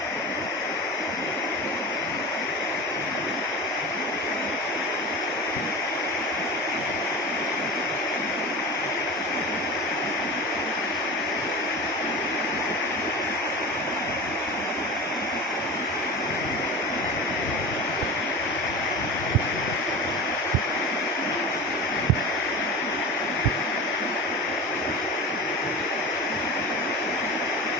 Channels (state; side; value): normal; both; correlation 0.31